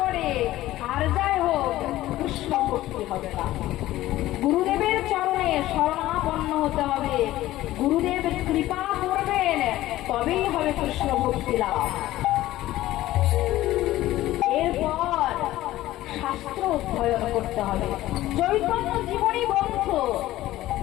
আর যাই হোক, কৃষ্ণ ভক্তি হবে না। গুরুদেবের চরণে শরণাপন্ন হতে হবে, গুরুদেব কৃপা করবেন, তবেই হবে কৃষ্ণ ভক্তি লাভ। এরপর শাস্ত্র অধ্যয়ন করতে হবে। চৈতন্য জীবনী গ্রন্থ,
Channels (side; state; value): right; quieter; 15.5 dB